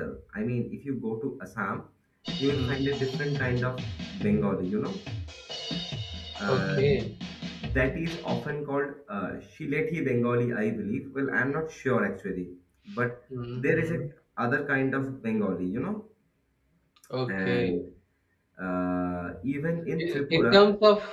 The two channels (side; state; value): both; identical; correlation 1.00